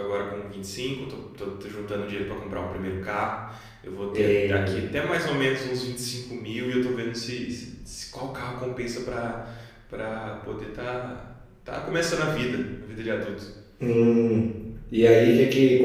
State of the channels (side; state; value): both; identical; correlation 1.00